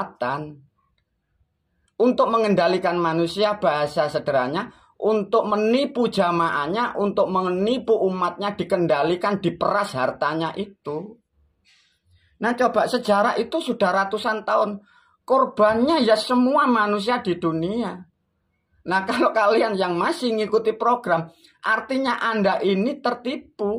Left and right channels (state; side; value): identical; both; correlation 1.00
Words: Untuk mengendalikan manusia, bahasa sederhananya, untuk menipu jamaahnya, untuk menipu umatnya, dikendalikan, diperas hartanya itu. Nah coba sejarah itu sudah ratusan tahun. Korbannya ya semua manusia di dunia. Nah kalau kalian yang masih ngikuti program, artinya Anda ini